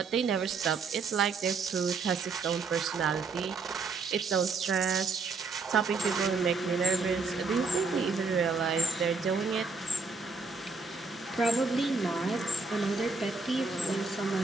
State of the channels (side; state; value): left; quieter; 4.4 dB